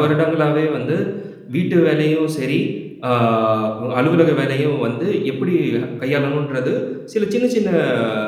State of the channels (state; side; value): identical; both; correlation 1.00